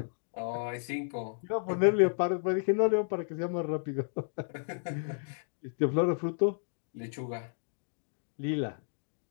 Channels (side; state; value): right; silent; digital silence